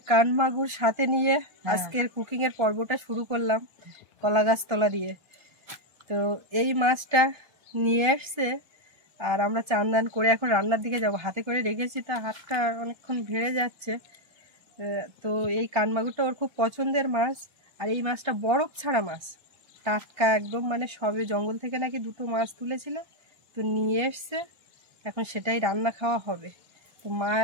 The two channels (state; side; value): late; left; 1.3 ms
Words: কান মাগুর সাথে নিয়ে আজকের কুকিং এর পর্বটা শুরু করলাম কলা গাছ তলা দিয়ে। তো এই মাছটা নিয়ে এসছে আর আমরা চান দান করে এখন রান্নার দিকে যাব। হাতে করে রেখেছি, তা হাতটা অনেকক্ষণ ভিড়ে যাচ্ছে। তো এই কান মাগুরটা ওর খুব পছন্দের মাছ, আর এই মাছটা বরফ ছাড়া মাছ, টাটকা একদম, মানে সবে জঙ্গল থেকে নাকি দুটো মাছ তুলেছিল, তো নিয়ে এসছে। এখন সেটাই রান্না খাওয়া হবে। তো মা